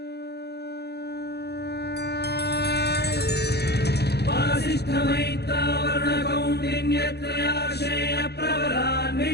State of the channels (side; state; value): right; late; 0.48 ms